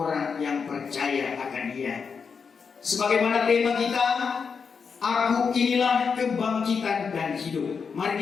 yang percaya akan Dia. Sebagaimana tema kita, aku inilah kebangkitan dan hidup.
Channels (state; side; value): quieter; right; 5.8 dB